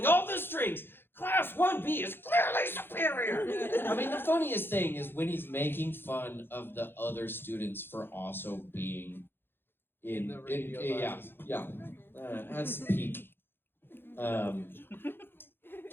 all the strings. Class 1B is clearly superior. I mean, the funniest thing is when he's making fun of the other students for also being in yeah. That's peak.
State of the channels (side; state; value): right; late; 0.10 ms